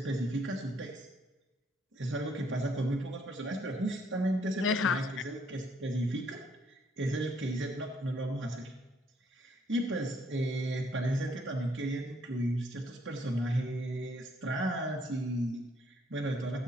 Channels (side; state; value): both; normal; correlation 0.68